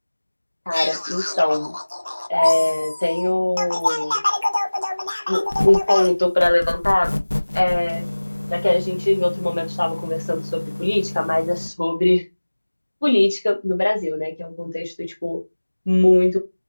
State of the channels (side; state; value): both; inverted; correlation -1.00